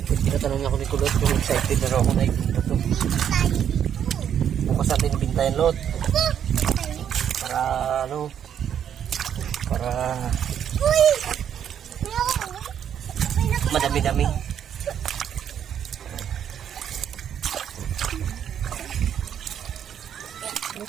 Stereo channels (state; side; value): quieter; left; 9.1 dB